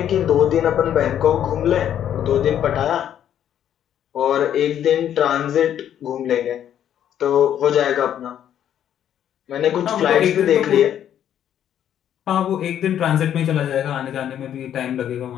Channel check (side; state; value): right; quieter; 10.2 dB